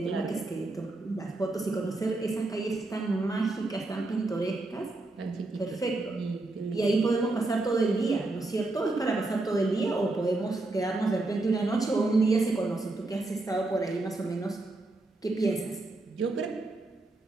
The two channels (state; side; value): quieter; left; 3.0 dB